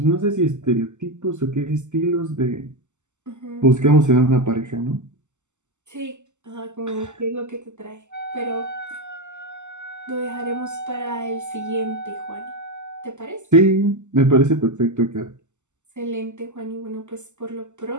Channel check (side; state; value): left; late; 0.84 ms